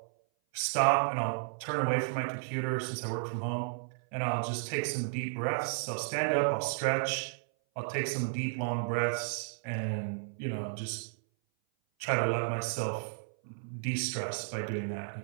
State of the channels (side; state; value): left; silent; 56 dB below the other